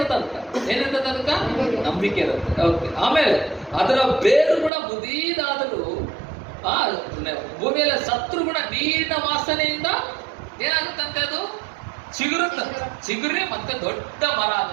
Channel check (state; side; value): drops out; left; at 4.7 s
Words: ಏನಿರ್ತದೆ ಅದಕ್ಕ? ನಂಬಿಕೆ ಇರುತ್ತೆ. ಓಕೆ. ಆಮೇಲೆ ಅದರ ಬೇರು ಕೂಡ ಮುದೀದಾದರೂ ಭೂಮಿಯಲ್ಲಿ ಸತ್ರು ಕೂಡ ನೀರಿನ ವಾಸನೆಯಿಂದ ಏನಾಗುತ್ತಂತೆ? ಅದು ಚಿಗುರಿ ಮತ್ತೆ ದೊಡ್ಡ ಮರ